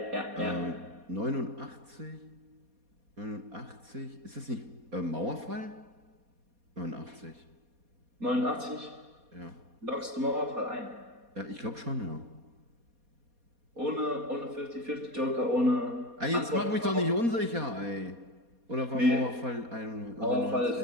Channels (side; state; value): left; late; 4.2 ms